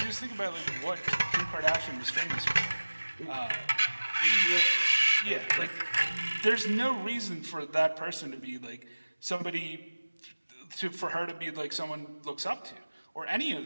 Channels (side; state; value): both; inverted; correlation -1.00